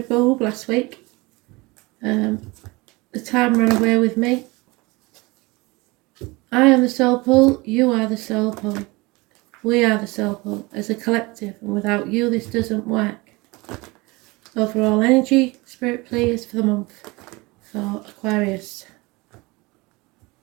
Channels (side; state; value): left; quieter; 24.0 dB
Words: bulb last week. The time ran away with me. I am the soul pull, you are the soul pull. We are the soul pull as a collective, and without you this doesn't work. Overall energy, spirit please for the month for Aquarius.